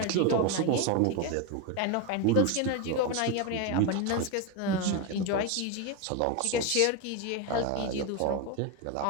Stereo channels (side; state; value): both; different; correlation 0.03